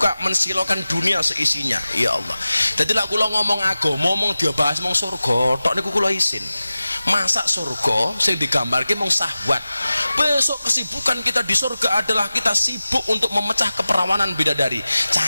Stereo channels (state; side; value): inverted; both; correlation -0.96